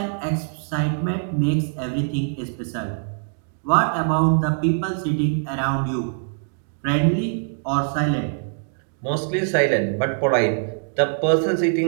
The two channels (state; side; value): silent; left; digital silence